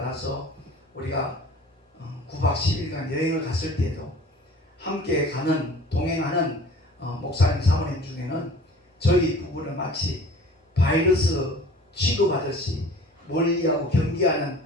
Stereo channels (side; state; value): both; normal; correlation 0.46